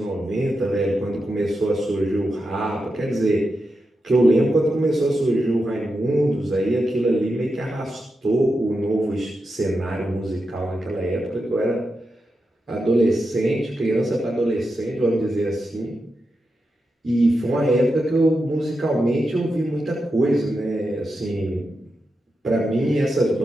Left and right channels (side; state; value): both; normal; correlation 0.88